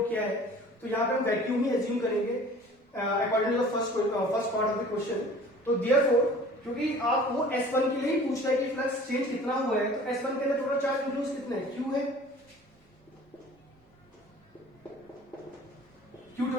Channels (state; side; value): normal; both; correlation 0.47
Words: क्या है, तो यहाँ पे हम वैक्यूम ही एज्यूम करेंगे according to the first part of the question. तो देयरफॉर क्योंकि आप वो S1 के लिए ही पूछ रहा है कि फ्लक्स चेंज कितना हुआ है, तो S1 के अंदर टोटल चार्ज इंक्लूड कितने हैं, Q है, Q